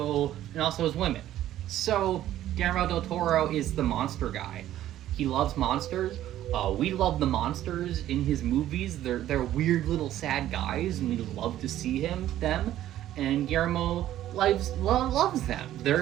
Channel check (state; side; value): quieter; left; 12.9 dB